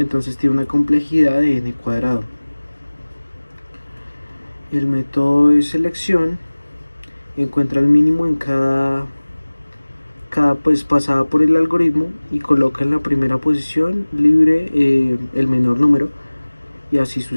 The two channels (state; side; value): inverted; both; correlation -1.00